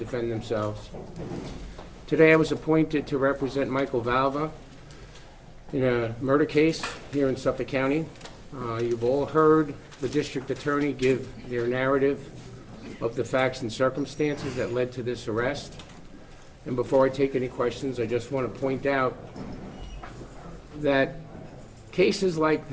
themselves. Today I was appointed to represent Michael Valva in a murder case here in Suffolk County. You've all heard the district attorney give their narrative of the facts and circumstances that led to this arrest. And before I take any questions, I just want to point out that cases like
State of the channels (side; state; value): both; identical; correlation 1.00